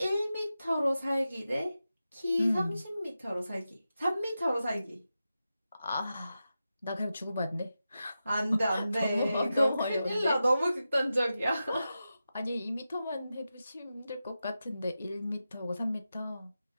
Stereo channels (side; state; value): both; inverted; correlation -0.91